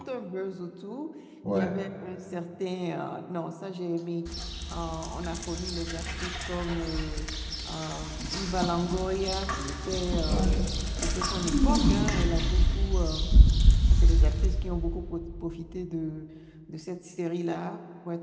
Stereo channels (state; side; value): identical; both; correlation 1.00